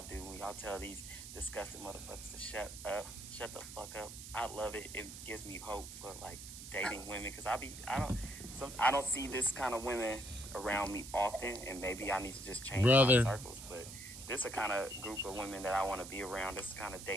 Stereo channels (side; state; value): right; noise; hiss, 11 dB below the sound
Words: do. When y'all tell these disgusting motherfuckers to shut the fuck up. I love it. It gives me hope for like dating women because I don't see this kind of women around me often, and maybe I need to just change Brother. my circles. But this is a kind of group of women that I want to be around. This is the kind of